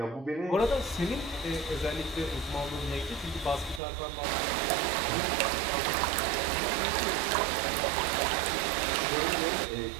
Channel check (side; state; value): left; drops out; at 3.8 s